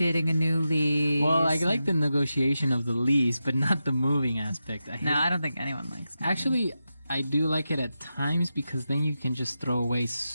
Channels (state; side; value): inverted; both; correlation -0.90